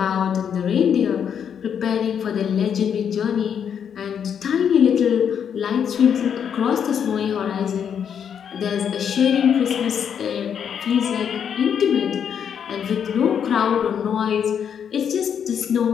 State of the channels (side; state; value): right; quieter; 8.0 dB